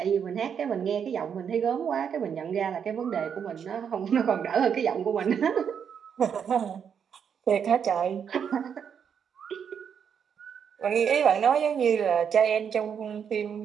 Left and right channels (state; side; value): quieter; left; 7.5 dB